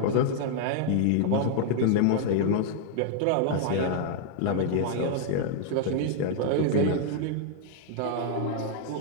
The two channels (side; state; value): both; different; correlation 0.00